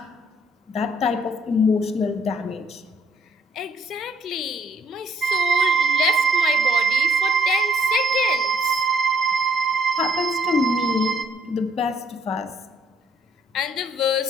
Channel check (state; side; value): normal; both; correlation 0.67